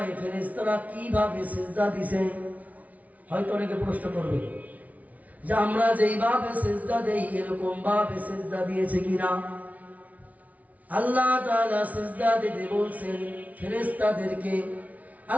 ফেরেশতারা কিভাবে সিজদা দিছে। হয়তো অনেকে প্রশ্ন করবে যে আমরা যেইভাবে সিজদা দেই এরকম ভাবে সিজদা দিয়েছে কিনা। আল্লাহ তাআলা সিজদা দিতে বলছেন ফেরেশতাদেরকে,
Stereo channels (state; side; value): late; left; 0.070 ms